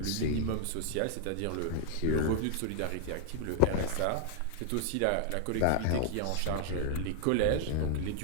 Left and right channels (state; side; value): different; both; correlation 0.00